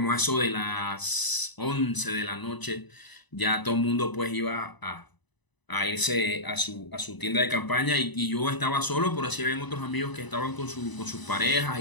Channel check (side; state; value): right; late; 1.0 ms